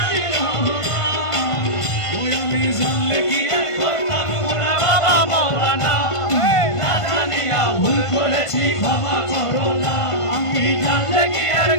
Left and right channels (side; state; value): right; late; 1.5 ms